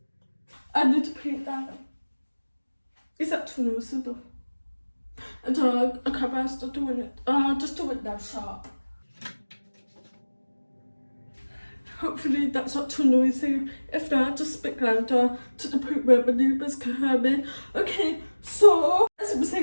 I need to paint that. Is that too noisy though? I don't know, I can't best start doing it. Just do it now, sharp. Hopefully that's not too noisy. If not, just speak louder to the point where my neighbours can hear me. Okay, so as I was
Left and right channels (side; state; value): both; inverted; correlation -1.00